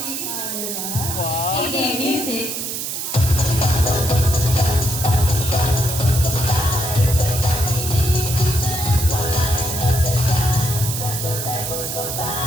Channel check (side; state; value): right; noise; hiss, 4 dB below the sound